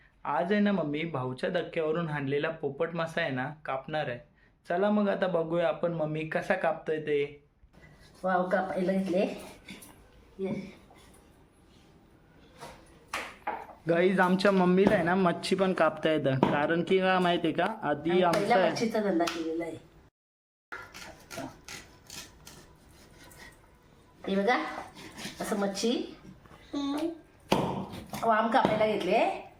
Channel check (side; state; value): both; identical; correlation 1.00